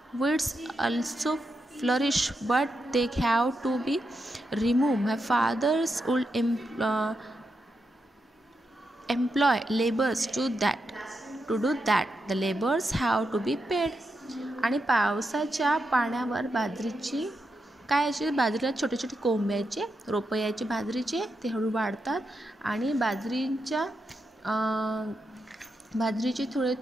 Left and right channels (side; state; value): both; normal; correlation 0.85